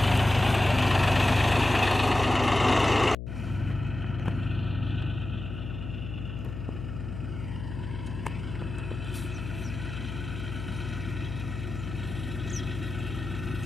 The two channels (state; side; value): noise; left; hum, 7 dB below the sound